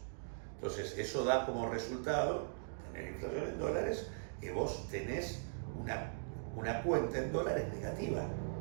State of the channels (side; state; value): left; silent; digital silence